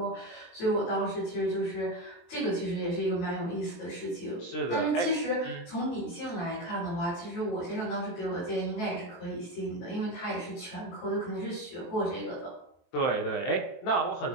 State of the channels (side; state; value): right; late; 23 ms